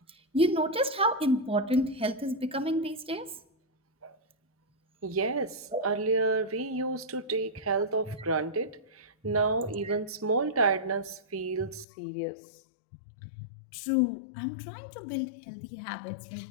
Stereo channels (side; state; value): right; drops out; at 11.9 s